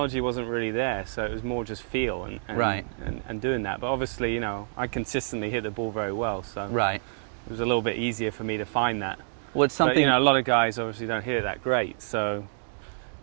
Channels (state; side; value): silent; left; digital silence